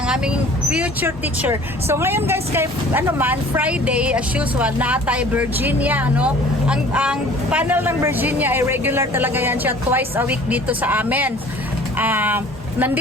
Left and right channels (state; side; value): normal; both; correlation 0.49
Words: aming future teacher. So ngayon guys, kay Friday as usual, natay Virginia, no? Ang panel ng Virginia ay regular talaga yan siya, twice a week dito sa amin.